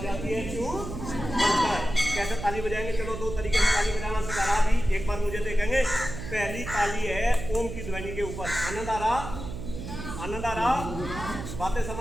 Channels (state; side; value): noise; right; hum, 8 dB below the sound